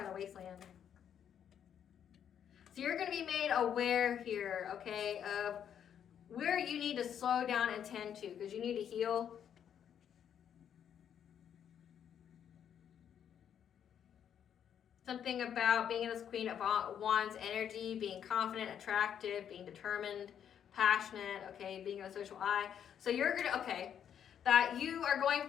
the wasteland. So you're going to be made aware here, okay, of where you need to slow down and tend to, because you need to heal. Something about being in this Queen of Wands energy, being confident, attractive, being determined, passionate, okay, being a social eye. So you're going to, okay, that you are going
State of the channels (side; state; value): right; quieter; 8.9 dB